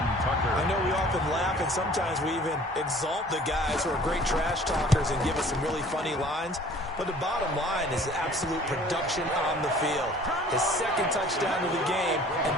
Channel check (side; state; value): both; normal; correlation 0.51